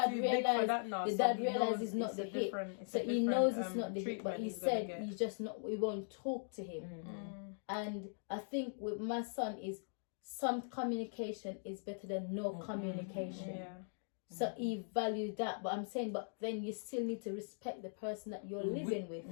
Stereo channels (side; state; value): right; silent; digital silence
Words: realized it's not the hit. So he knows it's not the hit, but he said he's just not, we won't talk to him. And I think with my son is some communication is better than no communication. So he valued that, but I'm saying, but then you still need to respect the person that you're living with.